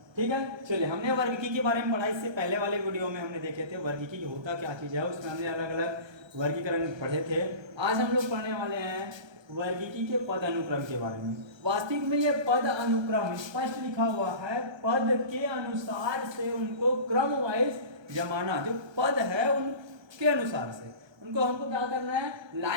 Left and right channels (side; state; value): left; late; 1.3 ms